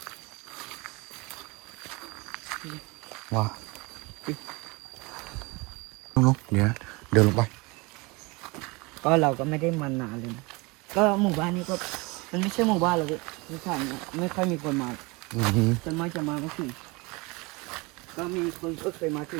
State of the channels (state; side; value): quieter; left; 26.0 dB